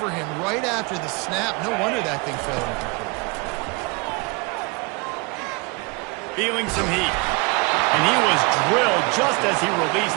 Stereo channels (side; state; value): left; quieter; 28.8 dB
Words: him right after the snap. No wonder that thing fell incomplete. Feeling some heat. And he was drilled just as he released